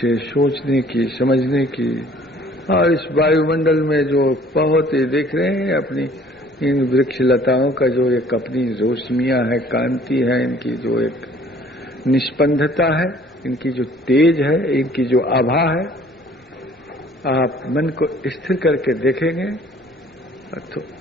सोचने की, समझने की, और इस वायुमंडल में जो बहुत ही देख रहे हैं अपनी इन वृक्ष लताओं का जो एक अपनी रोशनियां है, कांति है, इनकी जो एक निष्पंदता है, इनकी जो तेज है, इनकी जो आभा है, आप मन को स्थिर करके देखेंगे तो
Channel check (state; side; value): normal; both; correlation 0.55